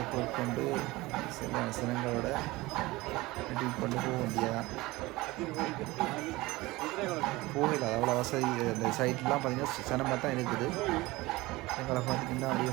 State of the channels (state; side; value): quieter; left; 20.4 dB